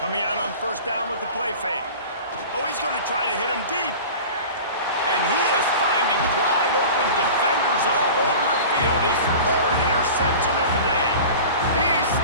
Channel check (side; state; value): both; inverted; correlation -0.37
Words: out on first down with the play fake. Oh, he's going to try to hit him deep. And he is finding wide open defenders all over the field. field. His third interception of the day. He's